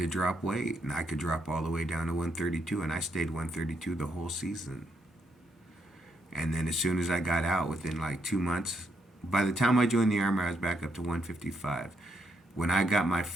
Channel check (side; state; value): both; normal; correlation 0.77